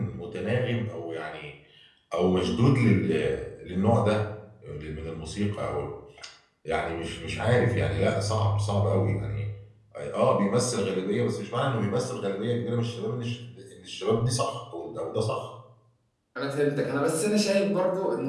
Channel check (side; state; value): both; identical; correlation 1.00